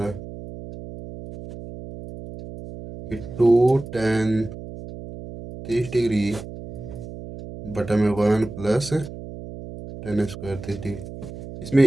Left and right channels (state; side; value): noise; right; hum, 12 dB below the sound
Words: है कि 2 tan 30 डिग्री बटा में 1 प्लस tan स्क्वायर 30 डिग्री।